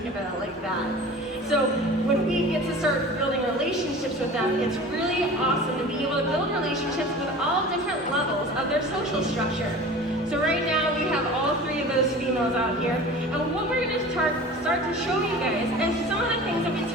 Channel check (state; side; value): normal; both; correlation 0.39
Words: about it like that. So when we get to start building relationships with them, it's really awesome to be able to build relationships with all different levels of their social structure. So right now we have all 3 of those females out here, and what we're going to start to show you guys is some of the things that we